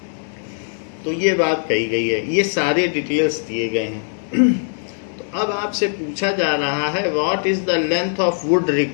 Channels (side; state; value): right; silent; digital silence